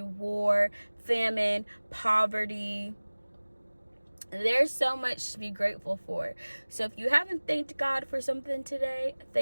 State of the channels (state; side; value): inverted; both; correlation -1.00